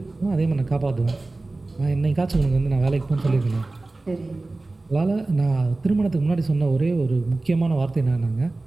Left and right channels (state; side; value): quieter; left; 3.1 dB